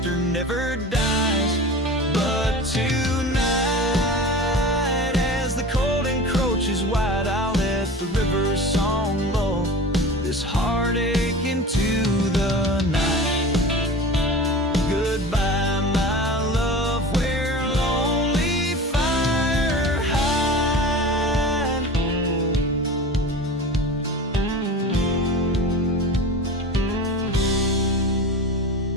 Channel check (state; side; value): normal; both; correlation 0.34